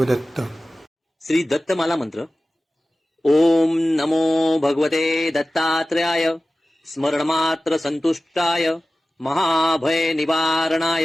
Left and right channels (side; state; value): both; normal; correlation 0.96